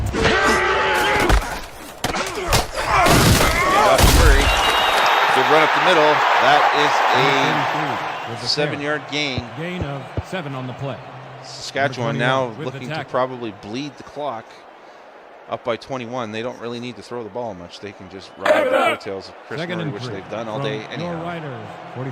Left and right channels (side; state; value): both; identical; correlation 1.00